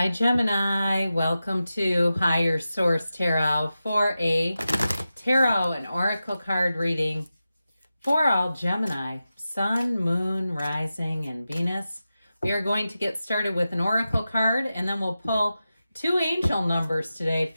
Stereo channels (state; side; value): inverted; both; correlation -0.93